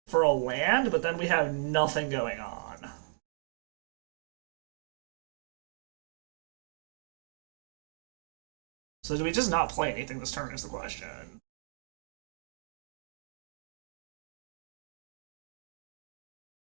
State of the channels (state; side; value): silent; left; digital silence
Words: for a land, but then we have nothing going on. So do we just not play anything this turn is the question.